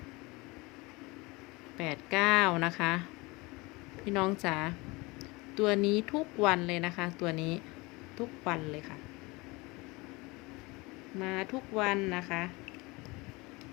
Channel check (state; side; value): quieter; right; 24.4 dB